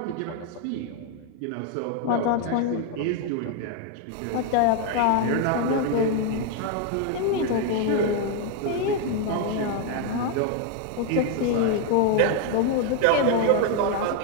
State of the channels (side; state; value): both; different; correlation 0.01